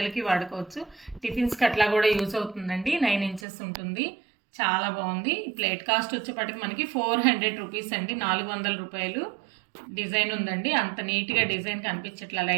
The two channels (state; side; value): drops out; left; at 3.4 s